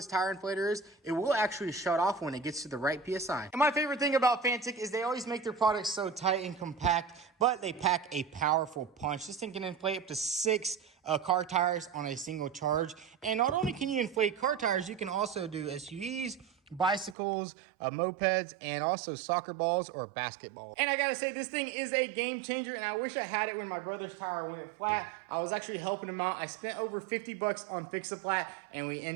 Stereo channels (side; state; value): left; drops out; at 17.2 s